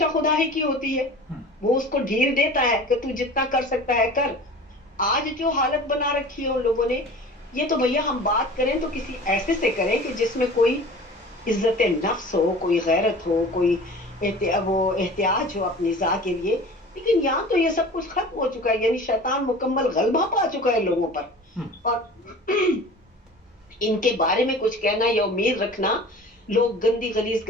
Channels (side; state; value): both; normal; correlation 0.40